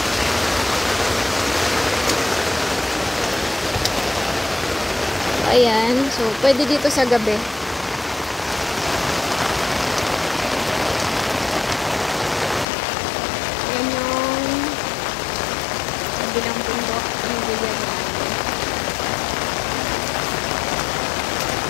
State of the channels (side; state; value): right; drops out; at 12.7 s